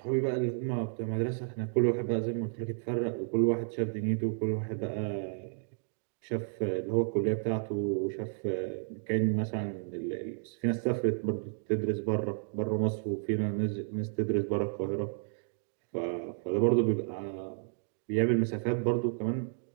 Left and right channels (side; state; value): left; silent; digital silence